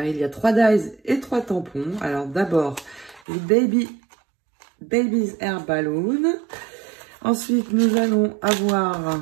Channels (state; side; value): drops out; left; at 3.2 s